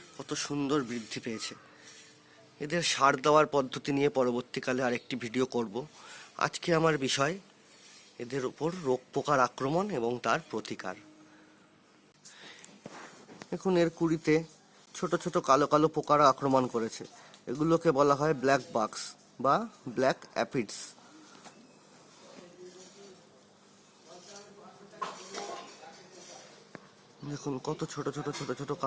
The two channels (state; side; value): identical; both; correlation 1.00